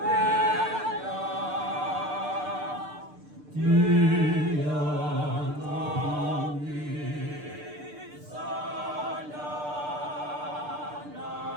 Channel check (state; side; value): late; left; 6.7 ms